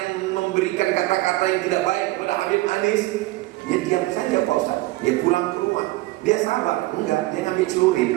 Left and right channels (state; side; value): quieter; left; 19.3 dB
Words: memberikan kata-kata yang tidak baik kepada Habib Anis, dia diam saja Pak Ustaz. Dia pulang ke rumah. Dia sabar? Enggak, dia ngambil celurit.